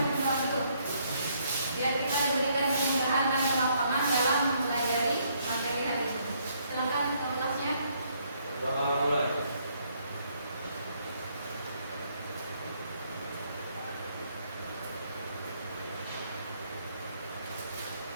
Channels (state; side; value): inverted; both; correlation -0.70